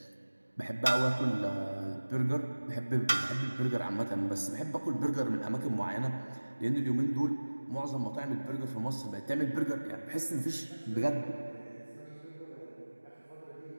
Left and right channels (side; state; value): both; inverted; correlation -1.00